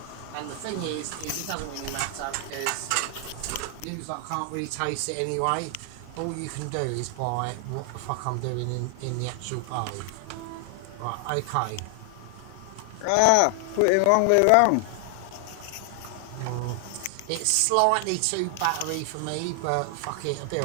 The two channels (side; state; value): both; different; correlation 0.00